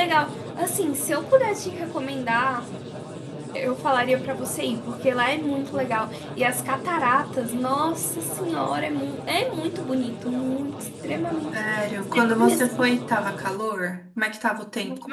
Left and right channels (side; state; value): both; identical; correlation 1.00